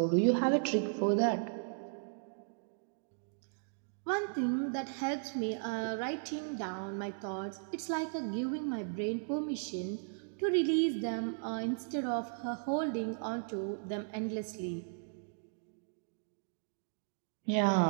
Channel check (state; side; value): silent; left; digital silence